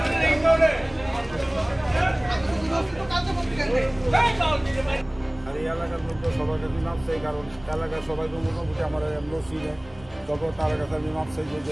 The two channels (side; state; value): left; noise; rumble, 23 dB below the sound